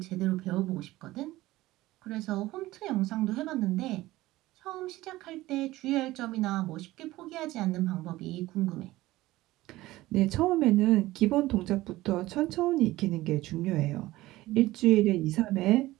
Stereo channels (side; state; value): left; quieter; 17.5 dB